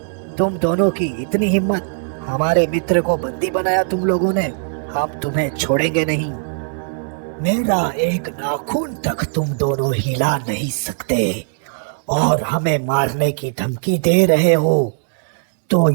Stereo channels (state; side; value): silent; left; digital silence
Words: तुम दोनों की इतनी हिम्मत? हमारे मित्र को बंदी बनाया तुम लोगों ने। हम तुम्हें छोड़ेंगे नहीं। मेरा एक नाखून तक तुम दोनों हिला नहीं सकते और हमें मारने की धमकी दे रहे हो, तो